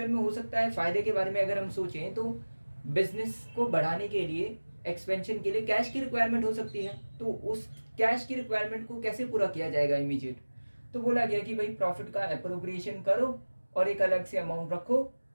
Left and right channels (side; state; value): both; inverted; correlation -1.00